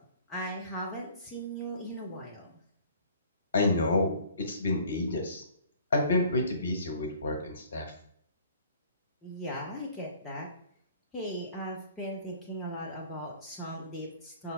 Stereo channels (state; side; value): inverted; both; correlation -0.52